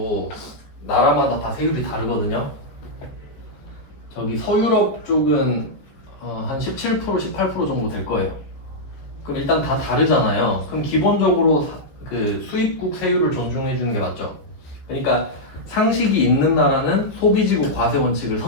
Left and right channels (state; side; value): late; right; 14 ms